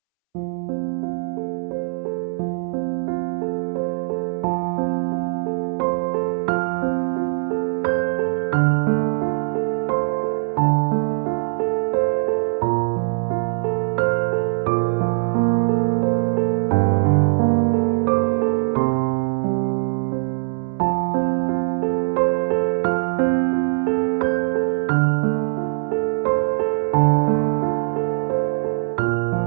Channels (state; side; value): silent; left; 65 dB below the other